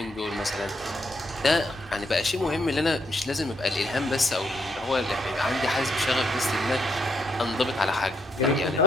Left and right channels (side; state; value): both; normal; correlation 0.76